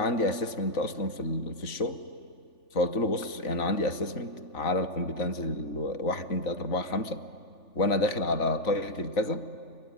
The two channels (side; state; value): right; late; 3.5 ms